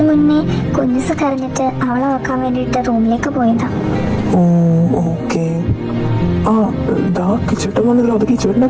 മുന്നേ കുഞ്ഞുസ് കരഞ്ഞിട്ട് അവളെ നോക്കാൻ വേണ്ടിയിട്ട് റൂമിലേക്ക് പോയതാ. ഓ ഓക്കെ. ആ ദാ കിച്ചേട്ടൻ വന്നല്ലോ. അത് കിച്ചേട്ടന്റെ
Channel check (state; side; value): identical; both; correlation 1.00